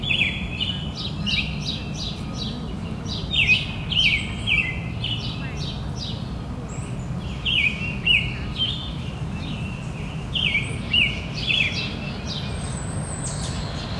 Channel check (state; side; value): identical; both; correlation 1.00